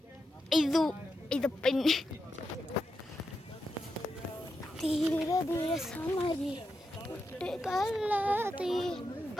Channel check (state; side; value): normal; both; correlation 0.86